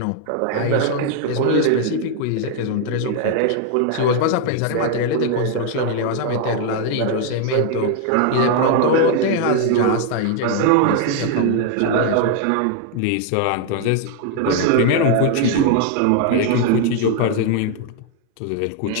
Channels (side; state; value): both; different; correlation 0.00